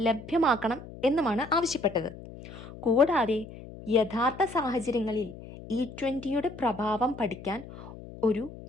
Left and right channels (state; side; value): noise; left; hum, 15 dB below the sound